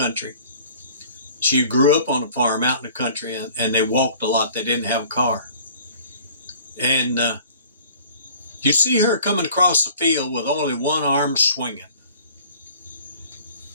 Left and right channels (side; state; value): both; inverted; correlation -0.49